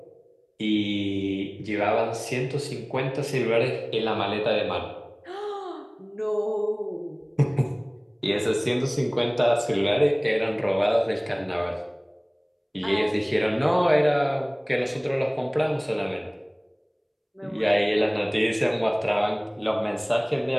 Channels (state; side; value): identical; both; correlation 1.00